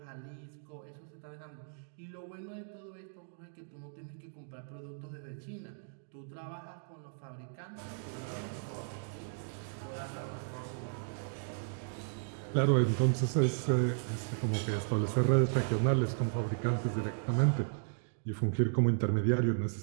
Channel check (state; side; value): silent; left; digital silence